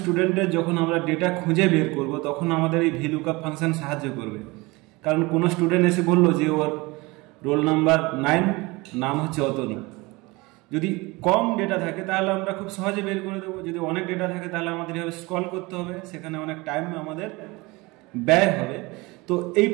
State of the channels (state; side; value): quieter; left; 23.7 dB